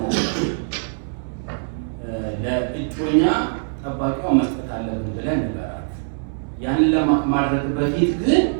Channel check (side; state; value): left; silent; 63 dB below the other